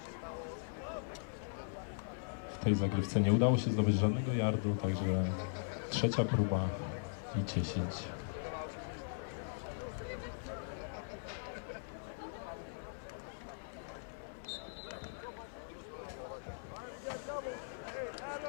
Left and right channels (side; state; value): right; silent; 51 dB below the other